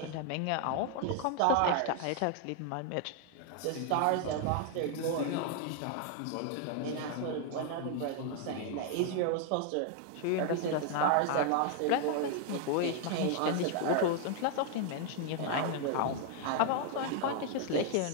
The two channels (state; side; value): different; both; correlation 0.00